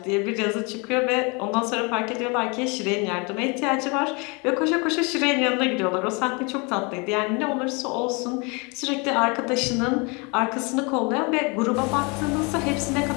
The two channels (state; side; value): quieter; right; 30.2 dB